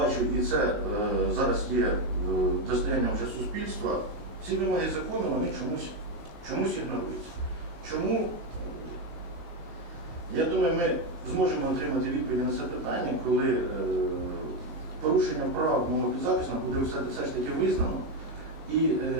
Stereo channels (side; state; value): left; late; 19 ms